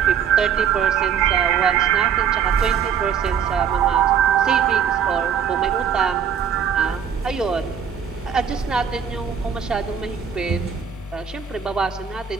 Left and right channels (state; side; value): quieter; left; 7.8 dB